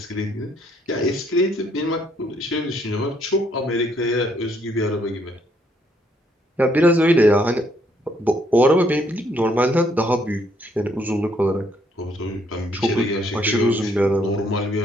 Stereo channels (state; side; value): normal; both; correlation 0.69